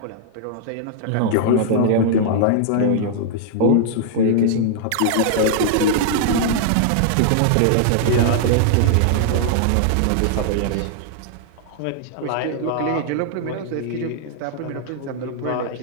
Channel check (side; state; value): both; different; correlation -0.01